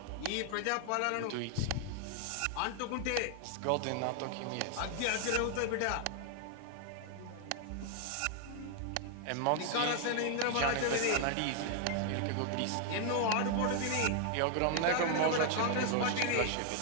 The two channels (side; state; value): both; different; correlation 0.00